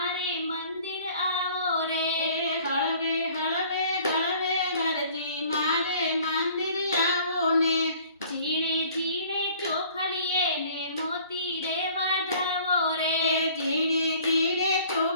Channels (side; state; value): both; inverted; correlation -0.52